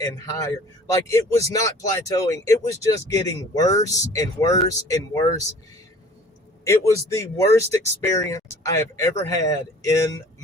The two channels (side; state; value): both; normal; correlation 0.48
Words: and higher. Like it was not plateauing. It was just getting worse and worse and worse. It was the worst experience I have ever had in